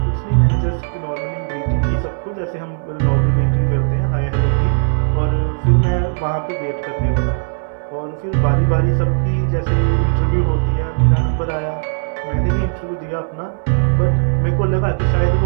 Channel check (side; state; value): left; silent; 66 dB below the other